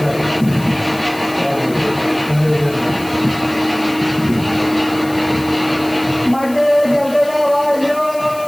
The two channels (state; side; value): noise; left; hiss, 18 dB below the sound